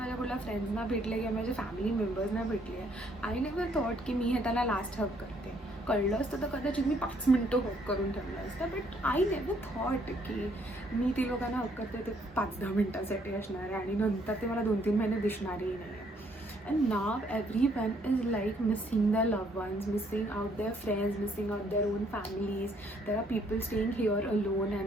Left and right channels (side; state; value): both; normal; correlation 0.67